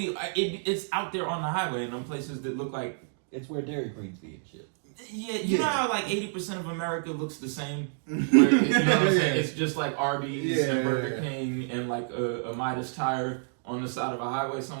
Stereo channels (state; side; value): silent; left; digital silence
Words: it's out there on the highway in them places that look like it's where Dairy Queens be and shit. Yeah, you know how like 80% of America looks the same. Where, you know what I'm saying? It's just like Arby's and Burger King and like a Midas tire on the side of a highway